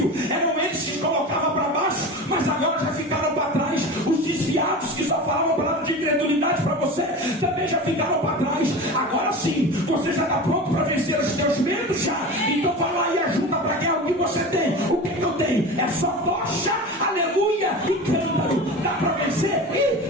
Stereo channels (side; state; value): both; normal; correlation 0.31